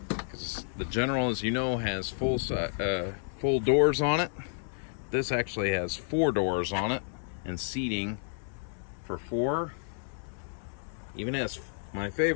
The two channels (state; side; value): silent; right; 57 dB below the other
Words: because the General, as you know, has full doors on it. This actually has 4 doors on it and seating for 4. Even has my